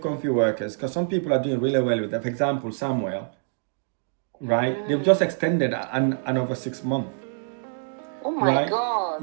workers, because some people are doing really well with them. For example, Samuel, right? They've just extended another 6 months. Oh my Right?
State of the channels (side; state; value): left; silent; digital silence